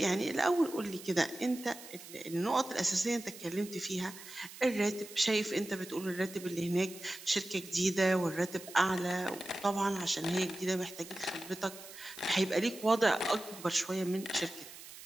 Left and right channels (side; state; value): right; noise; hiss, 15 dB below the sound